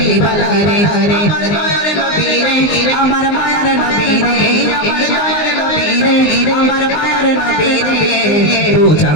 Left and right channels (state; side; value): late; right; 19 ms